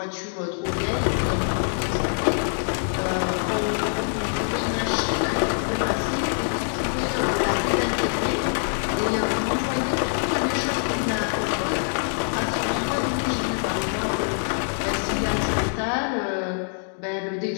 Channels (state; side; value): silent; right; digital silence